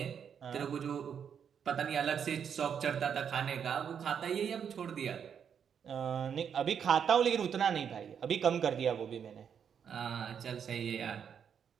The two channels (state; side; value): quieter; left; 7.7 dB